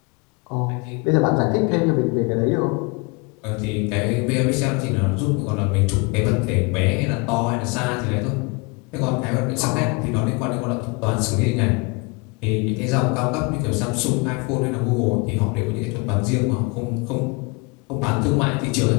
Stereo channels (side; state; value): right; quieter; 29.3 dB